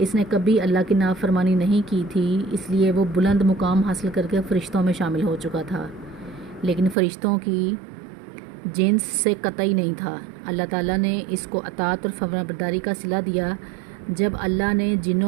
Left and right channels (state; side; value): drops out; left; at 7.0 s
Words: نے کبھی اللہ کی نافرمانی نہیں کی تھی، اس لیے وہ بلند مقام حاصل کر کے فرشتوں میں شامل ہو چکا تھا، لیکن فرشتوں کی جنس سے قطعی نہیں تھا۔ اللہ تعالیٰ نے اس کو اطاعت اور فرمانبرداری کا صلہ دیا۔ جب اللہ نے